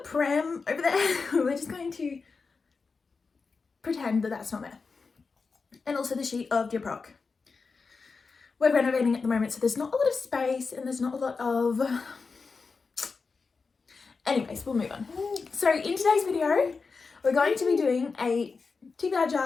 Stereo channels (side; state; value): right; quieter; 4.6 dB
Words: pram over there. We're just going to pretend that that's not there. And also the sheet of Dear Proc. We're renovating at the moment, so there's not a lot of space and there's not a lot of... Anyways, we'll move on. So in today's video, we're going to be doing a TBR